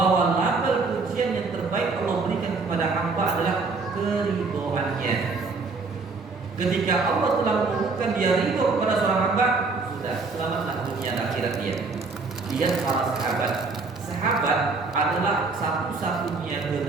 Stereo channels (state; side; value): quieter; left; 4.1 dB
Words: label pujian yang terbaik Allah berikan kepada hamba adalah keridhoannya. Ketika Allah telah menemukan dia ridho kepada seorang hamba, sudah selamatlah dunia dan akhirat dia. Lihat para sahabat. Sahabat adalah satu-satunya